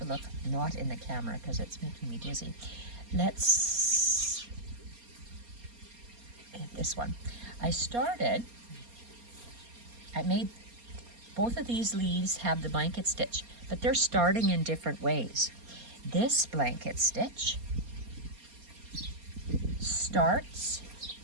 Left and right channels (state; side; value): late; left; 4.3 ms